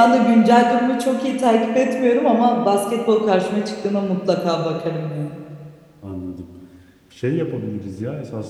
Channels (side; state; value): both; identical; correlation 1.00